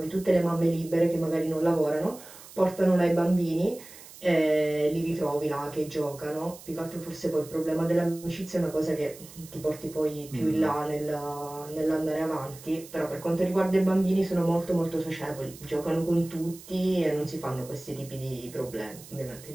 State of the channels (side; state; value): right; noise; hiss, 18 dB below the sound